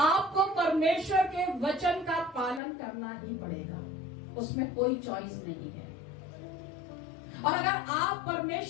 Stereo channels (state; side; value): drops out; right; at 2.6 s